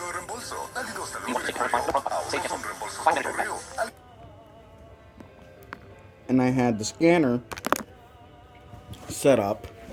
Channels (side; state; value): both; identical; correlation 1.00